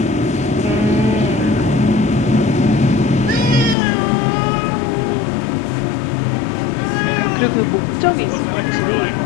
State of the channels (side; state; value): right; drops out; at 3.8 s